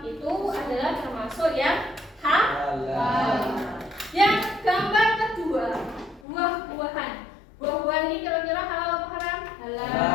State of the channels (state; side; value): drops out; right; at 6.2 s